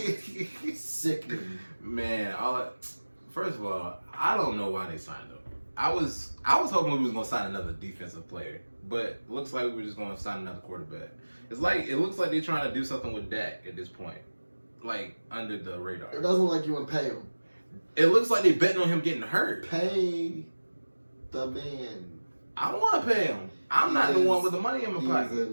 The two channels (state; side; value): inverted; both; correlation -1.00